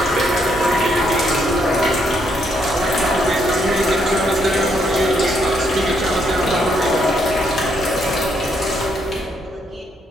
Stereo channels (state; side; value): normal; both; correlation 0.74